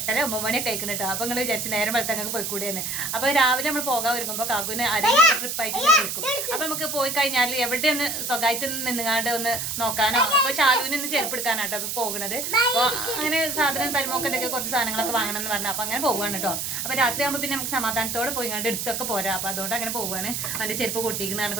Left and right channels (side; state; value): right; noise; hiss, 3 dB below the sound